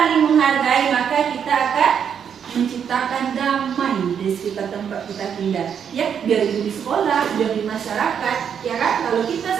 menghargai, maka kita akan menciptakan damai di sekitar tempat kita tinggal. Ya, biar itu di sekolah, biar di masyarakat, ya kan? Kalau kita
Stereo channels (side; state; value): left; quieter; 7.8 dB